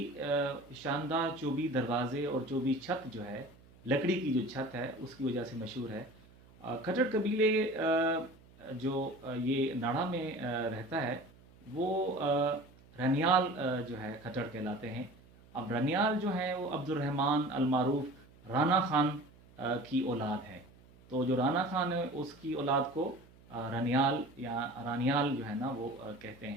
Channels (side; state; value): right; noise; hum, 25 dB below the sound